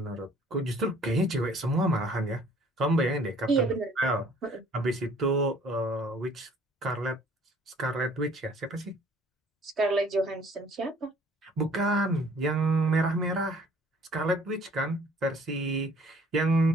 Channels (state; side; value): normal; both; correlation 0.56